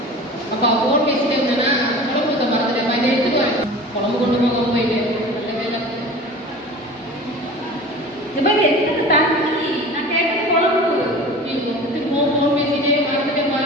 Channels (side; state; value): both; normal; correlation 0.38